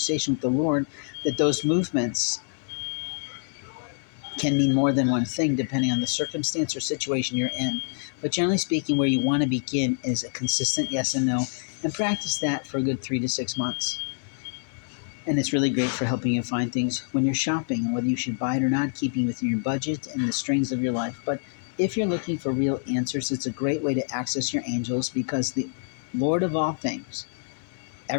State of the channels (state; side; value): silent; right; 61 dB below the other